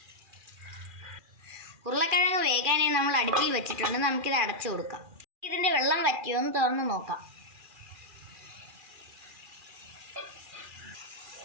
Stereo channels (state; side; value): late; left; 2.4 ms